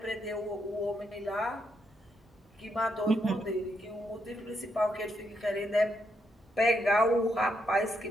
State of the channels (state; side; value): normal; both; correlation 0.78